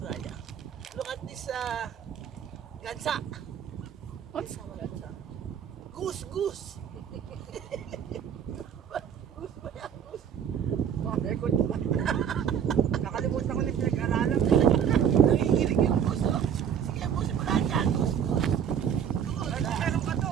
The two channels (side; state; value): left; quieter; 8.3 dB